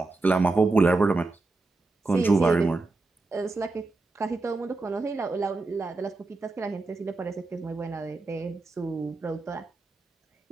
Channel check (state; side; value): quieter; left; 3.4 dB